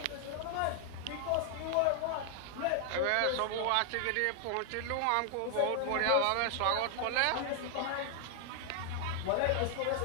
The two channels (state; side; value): different; both; correlation 0.00